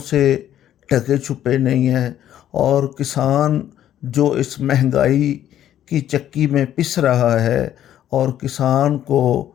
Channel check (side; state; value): right; quieter; 11.4 dB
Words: سے ڈھکے چھپے نہیں ہیں، اور کسان جو اس مہنگائی کی چکی میں پس رہا ہے، اور کسان کو